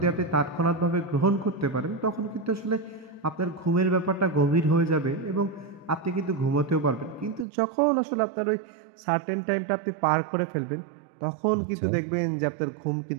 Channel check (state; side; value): drops out; left; at 7.5 s